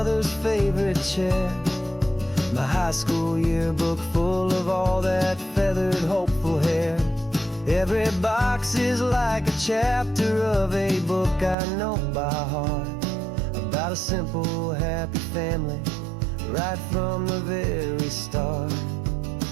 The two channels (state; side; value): drops out; left; at 11.6 s